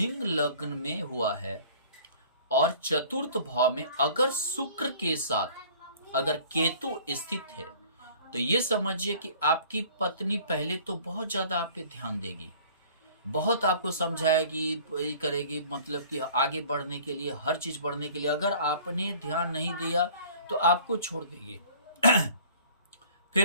लग्न में हुआ है और चतुर्थ भाव में अगर शुक्र के साथ अगर केतु स्थित है, तो ये समझिए कि आपकी पत्नी पहले तो बहुत ज्यादा आप पे ध्यान देगी, बहुत आपको समझाएगी, ये करेगी, मतलब कि आगे बढ़ने के लिए, हर चीज बढ़ने के लिए। अगर आपने ध्यान नहीं दिया तो आपको छोड़ देगी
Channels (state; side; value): inverted; both; correlation -0.50